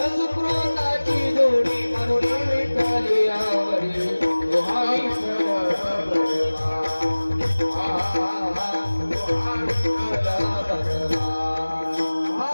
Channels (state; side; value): inverted; both; correlation -1.00